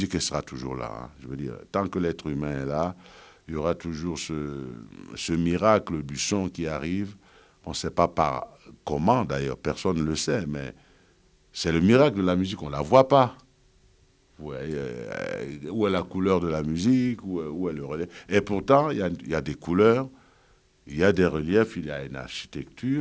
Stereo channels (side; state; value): both; identical; correlation 1.00